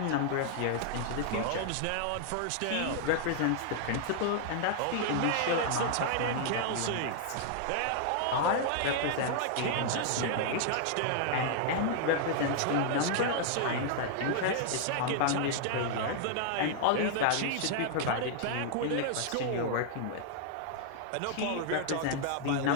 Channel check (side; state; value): both; different; correlation -0.01